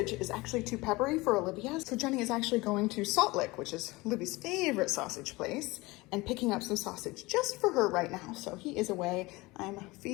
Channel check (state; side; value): quieter; right; 22.1 dB